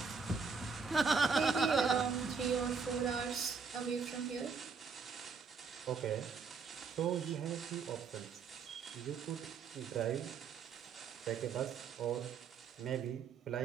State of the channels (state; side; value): quieter; left; 5.5 dB